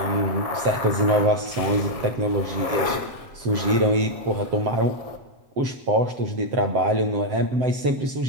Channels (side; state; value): left; late; 7.7 ms